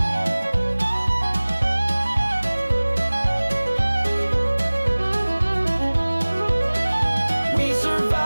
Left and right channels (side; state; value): both; inverted; correlation -1.00